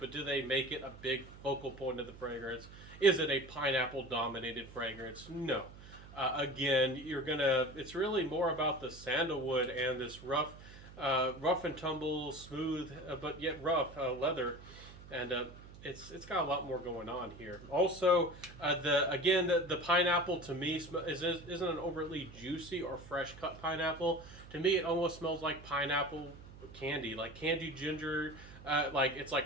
do they make it a big focal point of the fragrance? Is it a pineapple dominated fragrance? No. Again, it's really more about the sandalwood and this rough and tumble, smooth, but yet rough leather. And it's got a lot more going on here. Also, the pineapple to me isn't an overtly juicy or fresh cut pineapple. To me, it almost smells like pineapple candy, like candied ginger. It's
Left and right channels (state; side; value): noise; right; hum, 17 dB below the sound